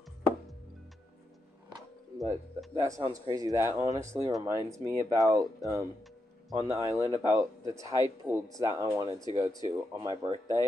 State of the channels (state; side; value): normal; both; correlation 0.84